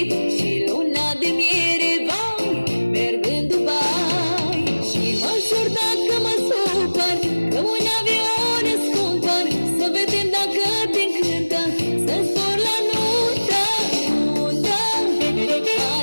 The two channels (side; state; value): both; inverted; correlation -1.00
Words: Și luna de miere, vai, merg în Dubai. Și mă jur dacă mă supăr, că un avion îți cumpăr, să vedem dacă te încântă, să zbor la nuntă. Nuntă,